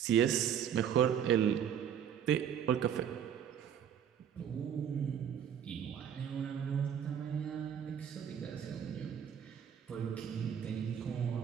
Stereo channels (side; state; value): left; quieter; 8.7 dB